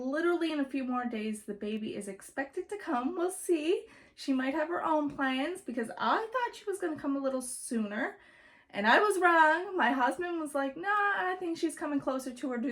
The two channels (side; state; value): both; identical; correlation 1.00